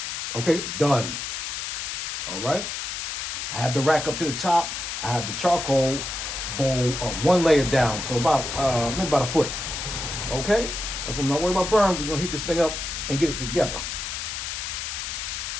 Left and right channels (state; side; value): noise; left; hiss, 4 dB below the sound